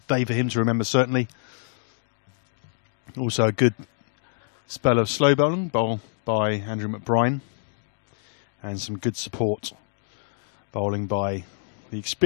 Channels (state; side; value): silent; right; digital silence